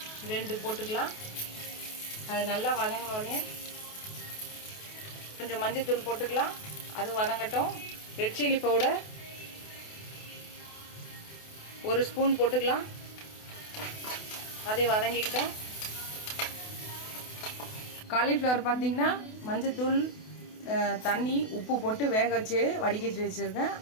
2 போட்டுக்கலாம். அது நல்லா வதங்கினோடனே கொஞ்சம் மஞ்சள்தூள் போட்டுக்கலாம். அது வதங்கட்டும். ரெட் சில்லி பவுடர் 1 ஸ்பூன் போட்டுக்கலாம். அதை வதங்கிக்கிட்டோம். காலிஃப்ளவர் பார்த்தீங்கன்னா மஞ்சத்தூள் தண்ணி உப்பு போட்டு வேக வச்சு வடிகட்டி வச்சுருக்கேன்.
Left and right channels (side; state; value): right; late; 28 ms